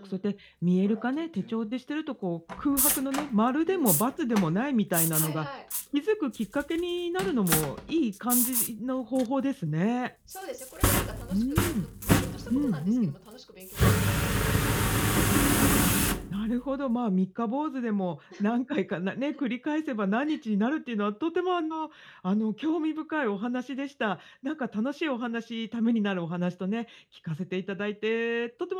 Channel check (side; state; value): both; identical; correlation 1.00